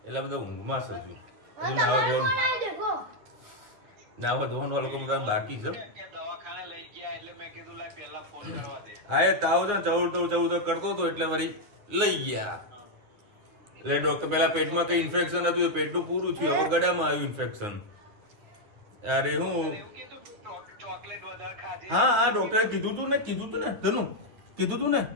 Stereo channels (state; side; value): late; left; 9.5 ms